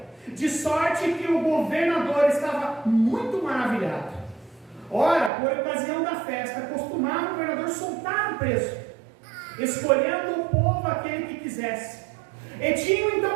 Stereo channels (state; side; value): drops out; left; at 5.3 s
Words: De sorte que o governador estava muito maravilhado. Ora, por ocasião da festa, costumava o governador soltar o preso, escolhendo o povo aquele que quisesse. E tinham